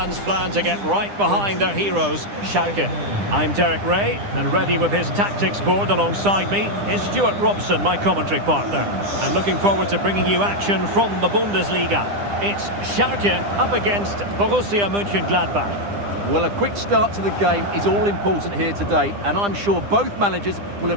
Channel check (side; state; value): left; late; 9.9 ms